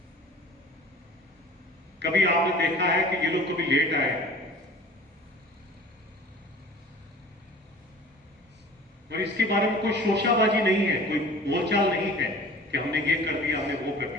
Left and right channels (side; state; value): both; normal; correlation 0.44